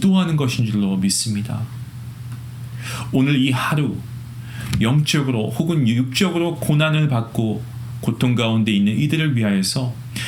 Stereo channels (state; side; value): identical; both; correlation 1.00